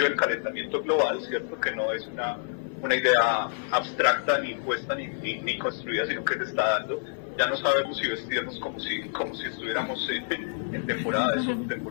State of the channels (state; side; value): silent; right; 60 dB below the other